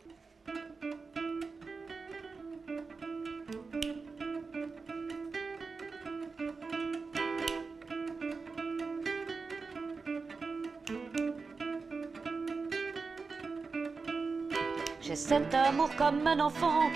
J'ai cet amour comme un enfant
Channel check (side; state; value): left; quieter; 4.5 dB